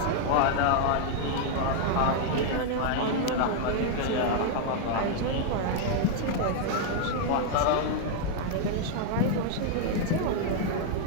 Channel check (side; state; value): both; different; correlation 0.00